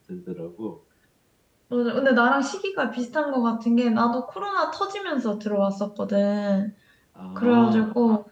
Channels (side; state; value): both; identical; correlation 1.00